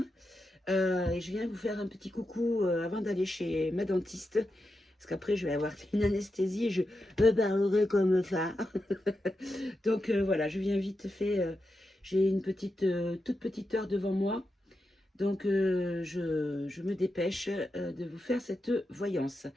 et je viens vous faire un petit coucou avant d'aller chez ma dentiste parce qu'après je vais avoir une anesthésie et je parlerai comme ça. Donc voilà, je viens vite fait, j'ai une toute petite heure devant moi. Donc, je me dépêche de vous faire cette voyance.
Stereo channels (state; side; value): normal; both; correlation 0.88